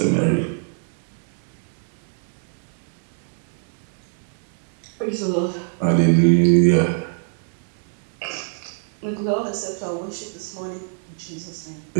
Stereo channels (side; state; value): left; silent; 57 dB below the other